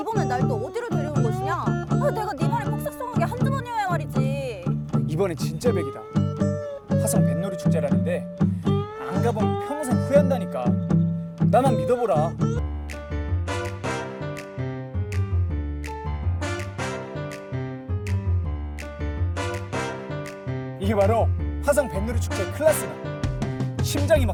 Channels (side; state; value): both; identical; correlation 1.00